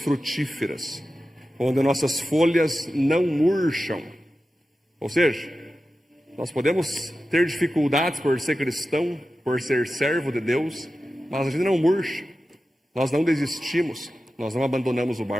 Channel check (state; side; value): normal; both; correlation 0.93